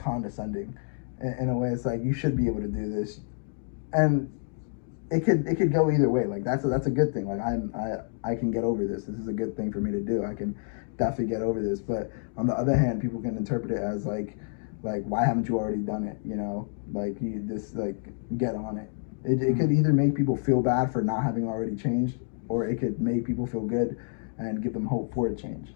In a way, it's like you should be able to do this, and it could go either way. Like that's a good thing. Like I can get over this. This is a good thing for me to do. I can definitely get over this. But on the other hand, people can interpret it as like why haven't you already done it? Like you just like get on it. It could either make people feel bad for not having already changed, or it could make people feel good and give them hope for a change.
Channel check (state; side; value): silent; right; digital silence